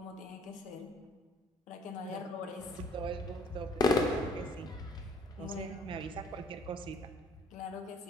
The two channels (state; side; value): normal; both; correlation 0.60